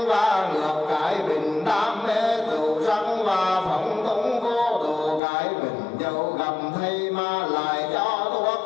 và ngược, cái bình đam mê tựu sắc và phóng túng vô độ, cái bình dẫu gặp thầy mà lại cho thuốc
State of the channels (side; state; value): right; drops out; at 5.2 s